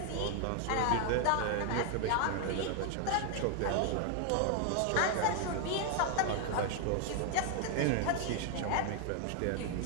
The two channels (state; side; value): different; both; correlation 0.00